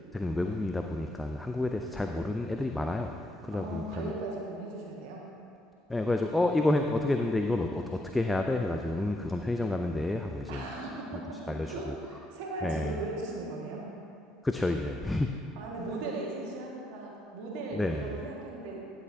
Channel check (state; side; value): normal; both; correlation 0.78